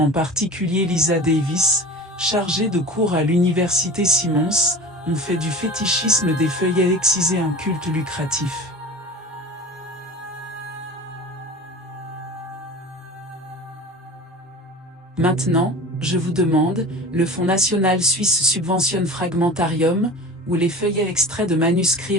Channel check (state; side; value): normal; both; correlation 0.36